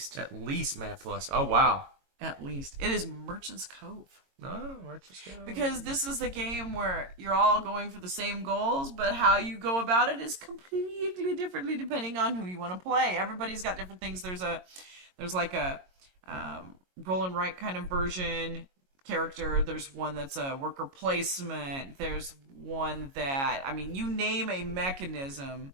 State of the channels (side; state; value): left; late; 22 ms